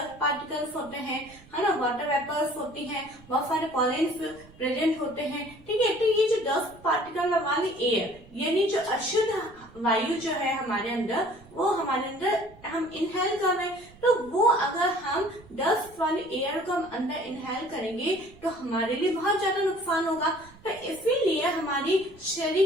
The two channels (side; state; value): right; noise; rumble, 24 dB below the sound